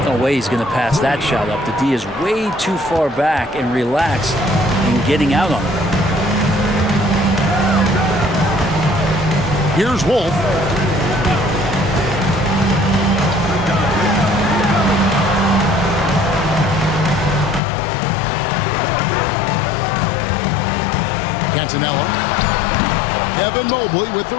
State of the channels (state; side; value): drops out; right; at 17.6 s